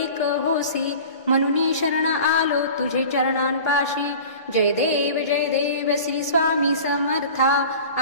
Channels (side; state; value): both; inverted; correlation -0.39